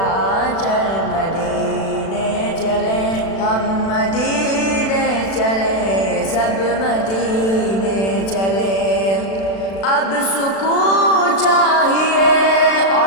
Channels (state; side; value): late; right; 36 ms